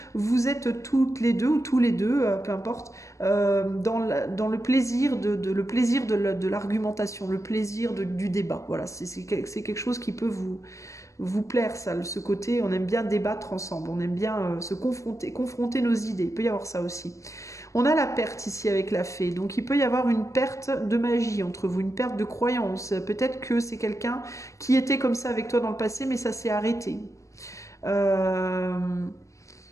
vous êtes toutes les deux ou tous les deux, peu importe, dans le plaisir de l'argumentation, le plaisir du débat. Voilà, c'est quelque chose qui peut vous plaire, ça, ce côté. On aime bien débattre ensemble, on aime bien se confronter nos idées. Il peut y avoir ça aussi. On a la perte ici avec la fée, donc il peut y avoir une perte de magie entre vous, une perte de croyance. Peut-être que c'est quelqu'un qui était comme ça avec toi dans le passé, mais ça s'est arrêté. Euh,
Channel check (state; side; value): late; right; 0.15 ms